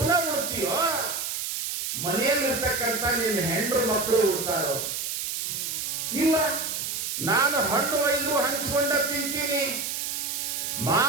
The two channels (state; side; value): noise; right; hiss, 3 dB below the sound